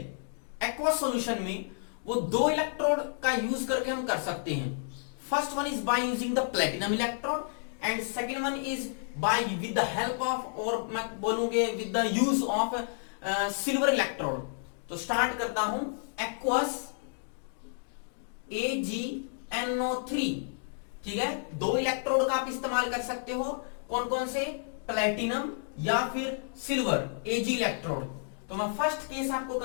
एक्वस सॉल्यूशन में, वो दो इलेक्ट्रोड का यूज करके हम कर सकते हैं। First one is by using the platinum electrode and second one is by with the help of, और मैं बोलूंगे with the use of silver electrode. तो स्टार्ट करता हूं एक्वस AgNO3। ठीक है, दो इलेक्ट्रोड का आप इस्तेमाल कर सकते हो। कौन कौन से? प्लेटिनम या फिर सिल्वर Ag इलेक्ट्रोड। तो मैं फर्स्ट केस आपको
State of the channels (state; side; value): silent; right; digital silence